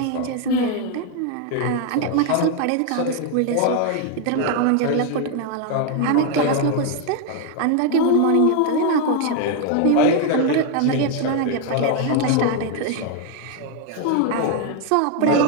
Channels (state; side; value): different; both; correlation 0.01